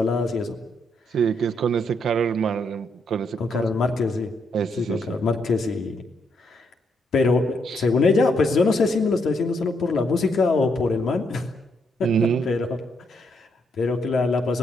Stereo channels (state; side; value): normal; both; correlation 0.76